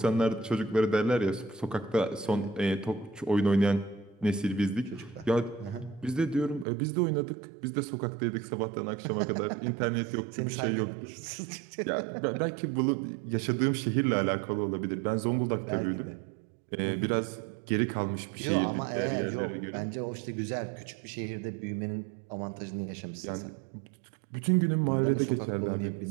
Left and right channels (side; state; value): left; drops out; at 6.7 s